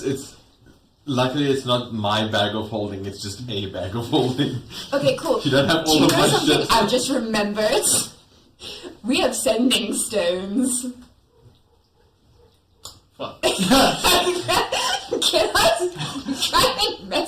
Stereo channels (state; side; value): identical; both; correlation 1.00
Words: luckily it's not my bag of holding. It's just a bag of holding. Okay, cool. You don't have Do all you of know my something shit. I just remembered? We have sending stones. Fuck. Can I try and